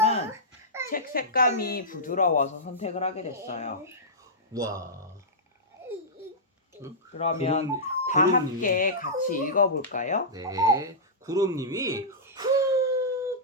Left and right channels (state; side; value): normal; both; correlation -0.14